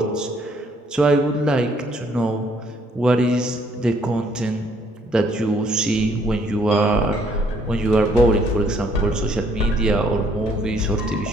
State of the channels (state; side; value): normal; both; correlation 0.65